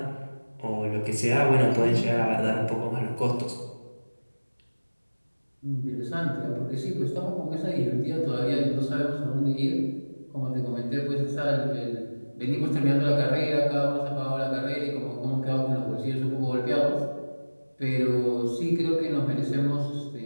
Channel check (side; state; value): both; inverted; correlation -1.00